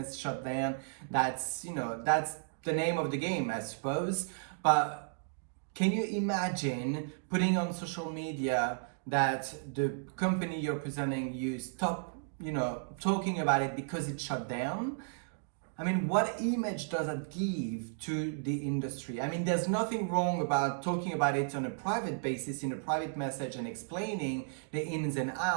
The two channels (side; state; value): left; silent; digital silence